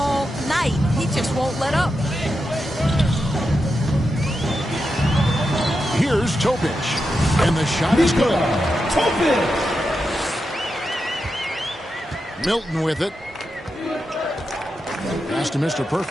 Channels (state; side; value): normal; both; correlation 0.88